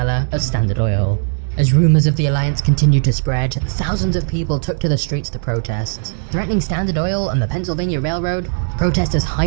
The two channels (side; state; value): left; silent; digital silence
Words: of Standard Oil. As rumors of the alliance continued to spread, thousands of people took to the streets to protest. Threatening Standard Oil and the Pennsylvania Railroad, protesters